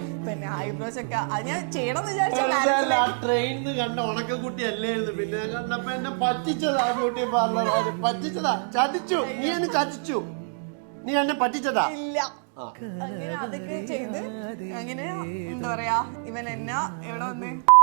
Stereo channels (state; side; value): silent; left; digital silence